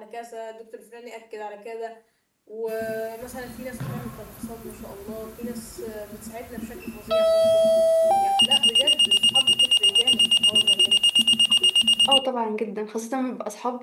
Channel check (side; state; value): both; identical; correlation 1.00